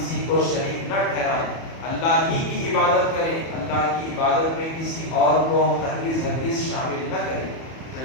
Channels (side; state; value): right; late; 31 ms